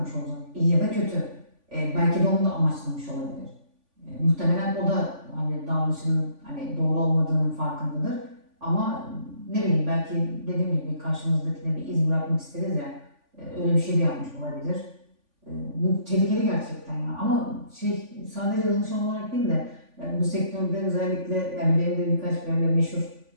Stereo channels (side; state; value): left; late; 3.5 ms